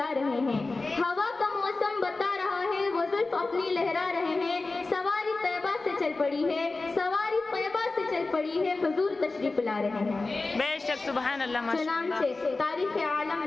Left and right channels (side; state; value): right; quieter; 3.5 dB